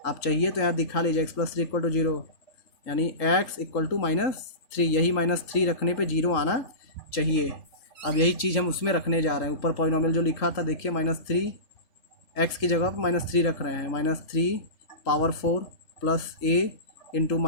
आप चाहिए तो यहाँ दिखा लीजिए, x plus three equal to zero, यानी x equal to minus three, यही माइनस थ्री रखने पे जीरो आना चाहिए। अब यही चीज़ हम उसमें रखने जा रहे हैं, ऊपर पॉलिनोमियल जो लिखा था देखिए, माइनस थ्री, एक्स की जगह पर माइनस थ्री रख रहे हैं, minus three power four plus a into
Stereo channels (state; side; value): late; right; 3.4 ms